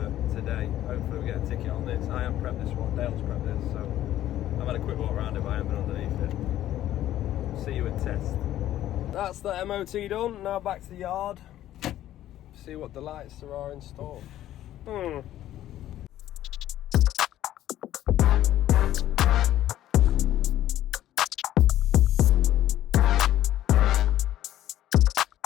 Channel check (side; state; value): right; quieter; 13.0 dB